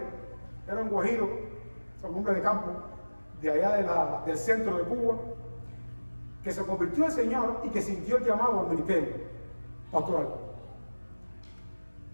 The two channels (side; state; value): both; inverted; correlation -1.00